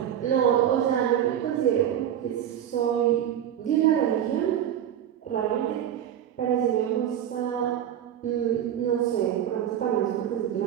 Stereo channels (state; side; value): quieter; left; 10.3 dB